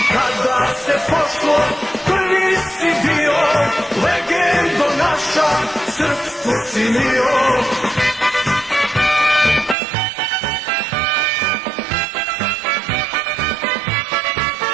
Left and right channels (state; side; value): drops out; left; at 9.8 s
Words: Kada se pošlo, prvi si bio, legendo naša, srpstvo si mio.